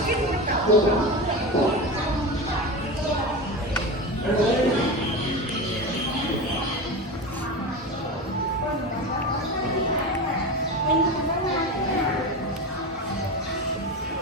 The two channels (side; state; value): both; normal; correlation 0.24